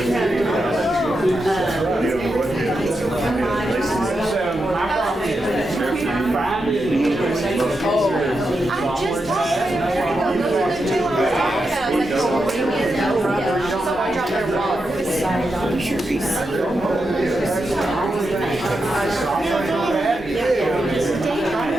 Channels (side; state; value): both; normal; correlation 0.87